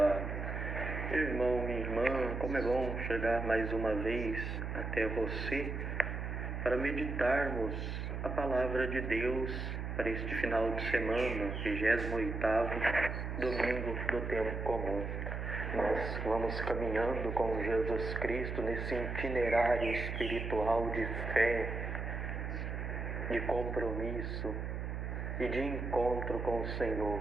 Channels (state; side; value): noise; right; hum, 4 dB below the sound